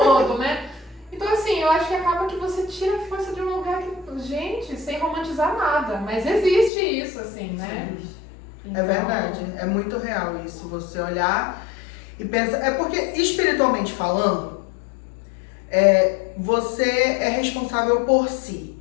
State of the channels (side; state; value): right; drops out; at 6.7 s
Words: né? Então, assim, eu acho que acaba que você tira a força de um lugar que, gente, sem romantizar nada, mas existe isso, assim, né? É verdade, é muito real isso, você olhar e pensar. É porque, espiritualmente falando, você é responsável por si.